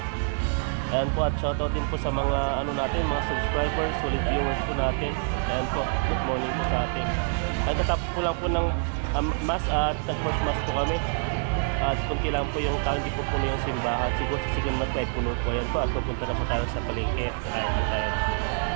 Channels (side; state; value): left; silent; 61 dB below the other